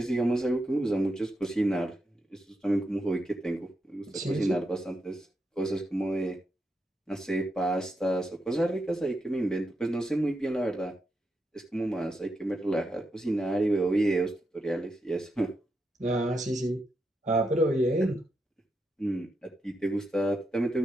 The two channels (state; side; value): normal; both; correlation 0.84